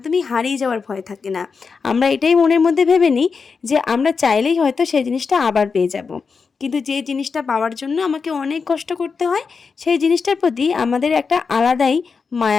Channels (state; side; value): quieter; right; 5.2 dB